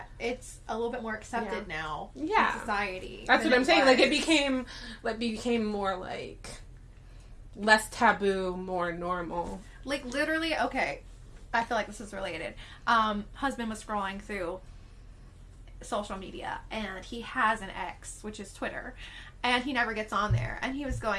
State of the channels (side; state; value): both; identical; correlation 1.00